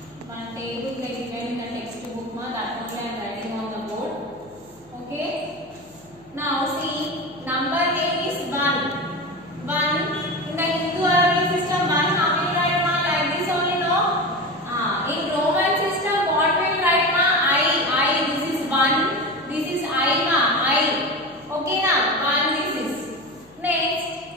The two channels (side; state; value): left; noise; hum, 29 dB below the sound